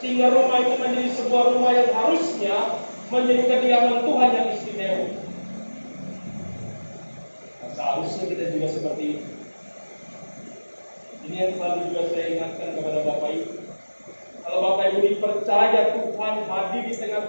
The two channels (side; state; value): both; inverted; correlation -1.00